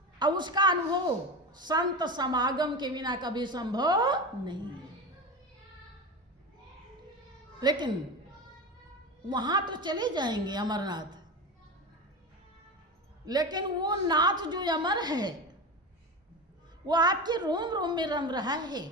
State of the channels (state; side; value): normal; both; correlation 0.24